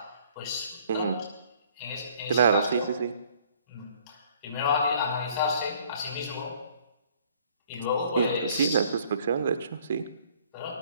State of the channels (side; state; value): both; inverted; correlation -0.59